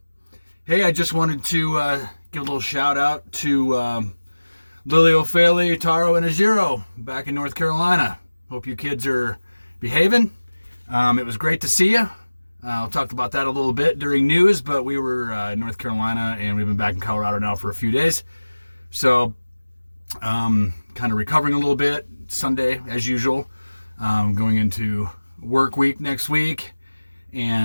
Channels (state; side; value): inverted; both; correlation -1.00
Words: I just wanted to give a little shout out to Lily O'Faley, Taro, and Ajiro back in North Carolina. Hope you kids are behaving. It was great to see you. I'll talk about that a little bit during news, but we were in North Carolina and we've been back in Colorado now for a few days. So, kind of recovering a little bit. Sunday, as usual. Going into work week next week.